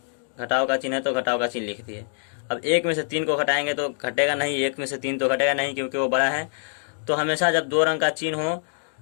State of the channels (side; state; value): right; silent; digital silence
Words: घटाव का चिन्ह है तो घटाव का चिन्ह लिख दिए। अब 1 में से 3 को घटाएंगे तो घटेगा नहीं, 1 में से 3 तो घटेगा नहीं क्योंकि वो बड़ा है। तो हमेशा जब दो रंग का चिन्ह हो,